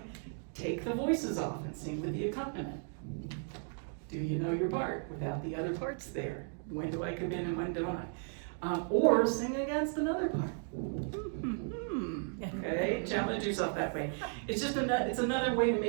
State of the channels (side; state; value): left; silent; 54 dB below the other